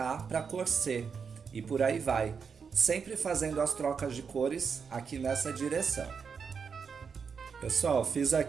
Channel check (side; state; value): left; quieter; 6.0 dB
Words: para a cor C e por aí vai, sempre fazendo as trocas de cores aqui nessa direção. Pessoal, fiz